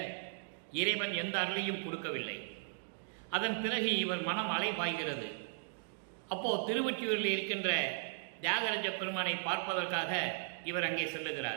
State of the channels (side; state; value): left; silent; digital silence